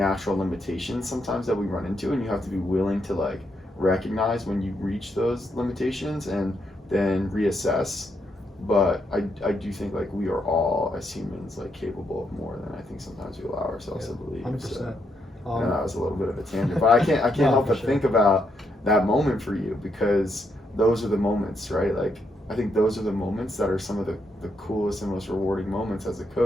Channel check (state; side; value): normal; both; correlation 0.78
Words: limitations sometimes that we run into, and you have to be willing to recognize when you reach those limitations and then reassess. But I do think we are all, as humans, capable of more than I think sometimes we allow ourselves to believe. 100%. So, and that was a little bit of a tangent, but I can't help but think about that moment for you, because those are the moments, right? I think those are the moments that are some of the coolest and most rewarding moments as a